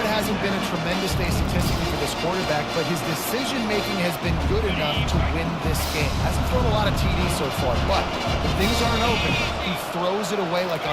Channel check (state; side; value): identical; both; correlation 1.00